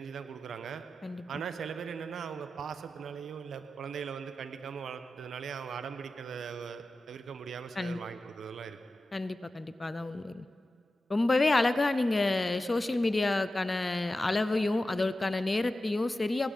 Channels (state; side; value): normal; both; correlation 0.93